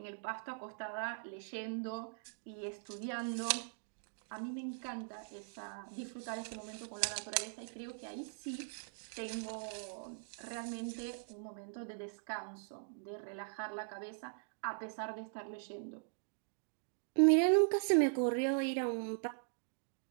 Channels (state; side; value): silent; left; digital silence